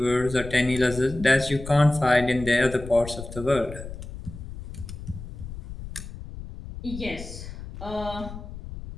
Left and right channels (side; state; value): left; noise; rumble, 11 dB below the sound